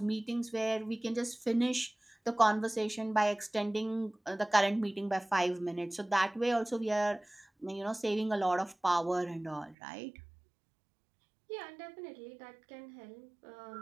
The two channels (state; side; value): drops out; left; at 9.8 s